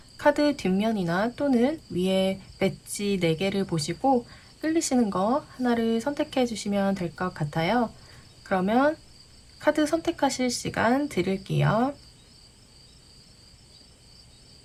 카드 뒷면이나 또는 위에 배지 4개를 보시고 끌리시는 거 하나를 선택해 주시면 될 것 같아요. 그러면 카드 선택하실 시간 드릴게요.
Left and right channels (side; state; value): both; identical; correlation 1.00